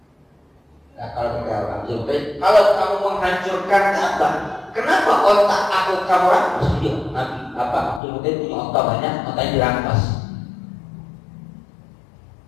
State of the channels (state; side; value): drops out; right; at 8.0 s